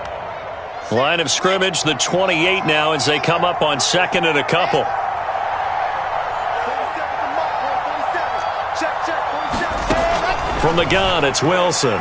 Line of scrimmage, the 28 now as they come up on 2nd and a couple. From the gun, it's Wilson.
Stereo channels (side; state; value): both; identical; correlation 1.00